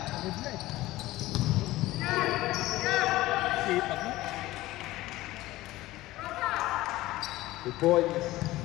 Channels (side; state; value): right; quieter; 17.4 dB